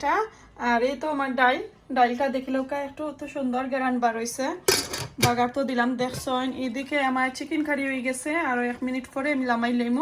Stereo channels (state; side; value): identical; both; correlation 1.00